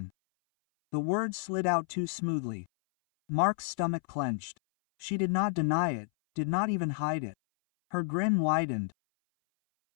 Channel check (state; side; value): silent; right; 57 dB below the other